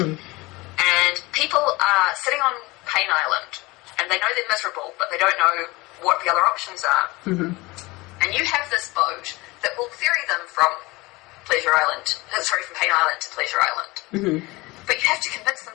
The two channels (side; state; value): right; quieter; 22.5 dB